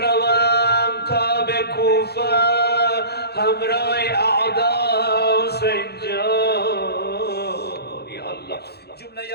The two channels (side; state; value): right; late; 0.47 ms